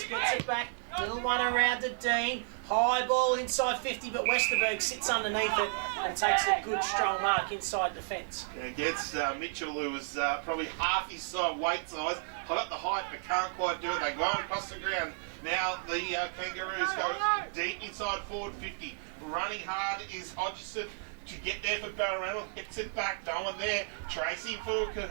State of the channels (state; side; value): silent; left; digital silence